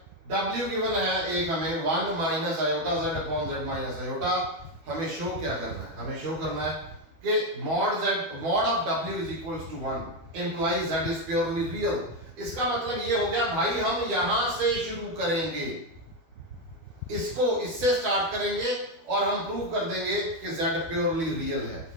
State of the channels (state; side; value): late; left; 12 ms